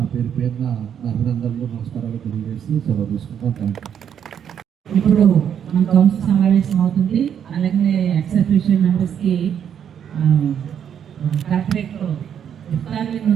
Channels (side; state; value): left; quieter; 8.6 dB